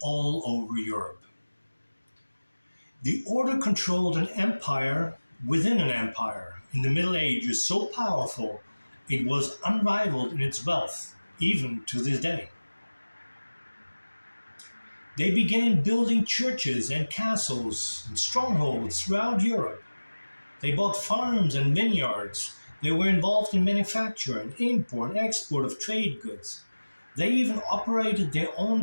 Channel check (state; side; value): inverted; both; correlation -1.00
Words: all over Europe. The Order controlled an empire within an empire in the Middle Ages so powerful it was unrivaled in its wealth, even to this day. They began building churches and castles and strongholds throughout Europe. They bought farms and vineyards. They were involved in manufacture and import and export of trade goods. They even operated their